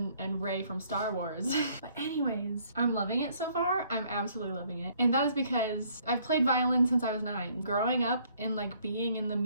and Rey from Star Wars. But anyways, I'm loving it so far. I'm absolutely loving it. And that is because I've played violin since I was 9. Growing up and like being in the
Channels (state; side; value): inverted; both; correlation -0.63